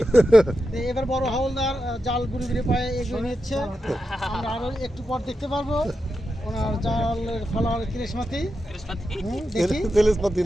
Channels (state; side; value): normal; both; correlation 0.88